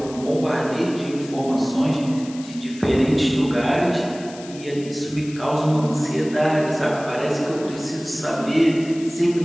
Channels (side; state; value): left; noise; hiss, 18 dB below the sound